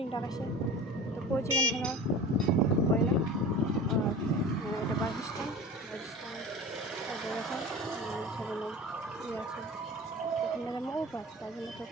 ডাকাইছে তো পৌঁছে গেল হলো হয় না। আর এটা বাস স্ট্যান্ড এখন সেখানে ইয়ে আছে, ওখানে যেমন ও পাস, তার জন্য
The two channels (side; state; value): both; normal; correlation 0.36